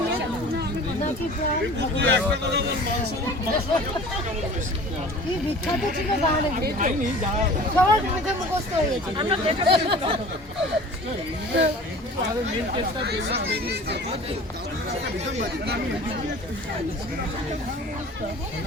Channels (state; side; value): normal; both; correlation 0.43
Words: কি বিখ্যাত ছিল গান, সবার মুখে মুখস্থ হয়ে গেছে।